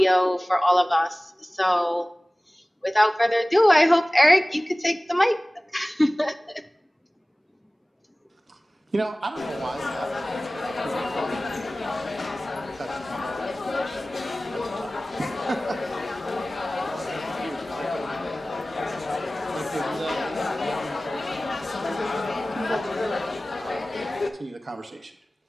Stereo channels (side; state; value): both; normal; correlation 0.98